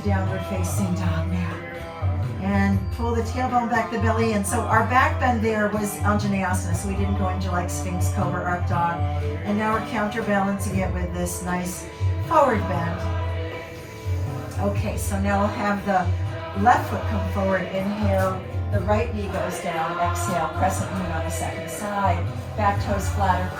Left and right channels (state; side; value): identical; both; correlation 1.00